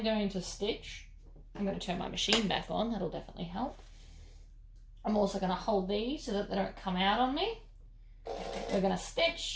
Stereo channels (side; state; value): both; identical; correlation 1.00